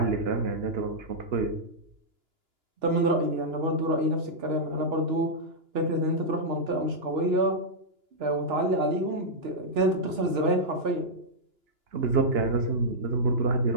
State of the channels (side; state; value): left; late; 2.9 ms